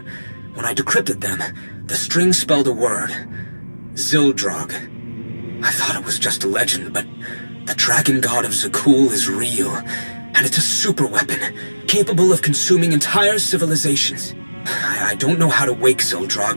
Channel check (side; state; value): both; inverted; correlation -1.00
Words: When I decrypted them, the string spelled a word. Zildrog. I thought it was just a legend, but the dragon god of Zakul is real, and it's a super weapon, capable of consuming entire civilizations. I don't know how to wake